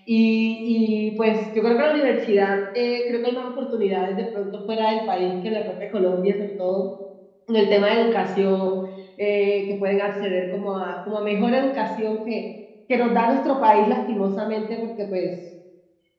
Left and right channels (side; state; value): both; identical; correlation 1.00